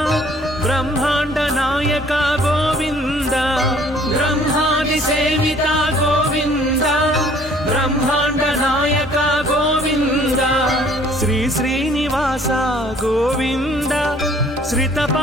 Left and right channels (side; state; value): both; normal; correlation 0.57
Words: బ్రహ్మాండ నాయక గోవింద బ్రహ్మాది సేవిత గోవింద బ్రహ్మాండ నాయక గోవింద శ్రీ శ్రీ శ్రీనివాస గోవింద శ్రిత